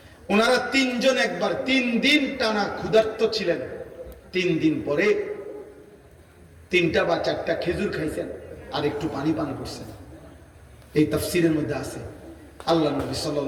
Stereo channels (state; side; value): identical; both; correlation 1.00